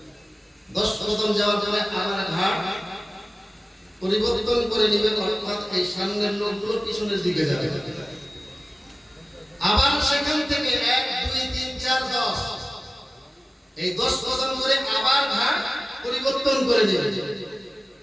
10 কদম যাওয়ার পরে আবার ঘাট পরিবর্তন করে নিবে, অর্থাৎ এই সামনের লোকগুলো পিছনের দিকে যাবে। আবার সেখান থেকে 1 2 3 4 10 এই 10 কদম করে আবার ঘাট পরিবর্তন করে নিবে।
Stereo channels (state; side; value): normal; both; correlation 0.97